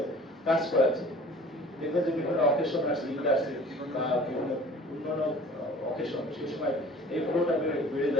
কাজ করাচ্ছে। দেখবেন যে বিভিন্ন অকেশন আসছে, ঈদ আসছে বা বিভিন্ন অন্যান্য অকেশন, সেই সময় এই ফ্লোটা বেড়ে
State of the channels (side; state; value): both; normal; correlation 0.46